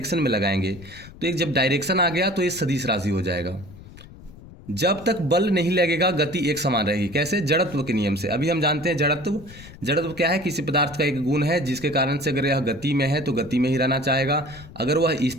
में लगाएंगे, तो एक जब डायरेक्शन आ गया तो ये सदिश राशि हो जाएगा। जब तक बल नहीं लगेगा गति एक समान रहेगी। कैसे जड़त्व के नियम से। अभी हम जानते हैं जड़त्व क्या है किसी पदार्थ का एक गुण है जिसके कारण से अगर यह गति में है तो गति में ही रहना चाहेगा, अगर वह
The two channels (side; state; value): left; noise; rumble, 18 dB below the sound